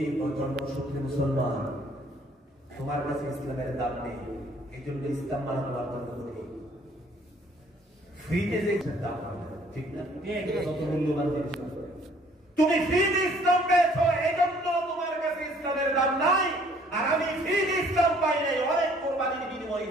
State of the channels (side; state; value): both; normal; correlation 0.59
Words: জন্মসূত্রে মুসলমান, তোমার কাছে ইসলামের দাম নেই, এই জন্য ইসলাম মানা তোমার জন্য কঠিন। ফ্রিতে যে দাম হবে, ঠিক না? যত মূল্যবান জিনিস তুমি ফ্রিতে ইসলাম পেয়েছো, এই জন্য তোমার কাছে ইসলামের দাম নাই। আর আমি ফ্রিতে ইসলাম পাই নাই, অনেক কোরবানির বিনিময়ে